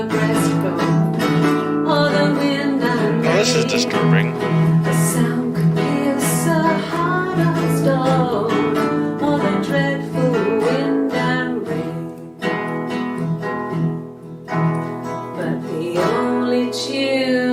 breastbone. Oh, the wind and rain. Oh, this is disturbing. The sound could pierce a heart of stone. Oh, the dreadful wind and rain. But the only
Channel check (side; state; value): both; identical; correlation 1.00